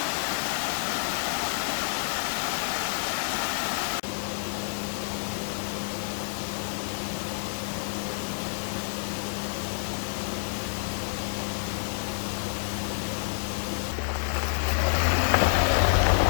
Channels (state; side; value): silent; right; digital silence